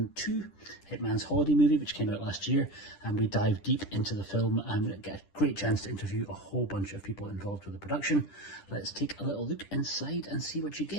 2, Hitman's holiday movie, which came out last year, and we dive deep into the film and get a great chance to interview a whole bunch of people involved with the production. Let's take a little look inside and see what you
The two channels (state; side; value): late; right; 10 ms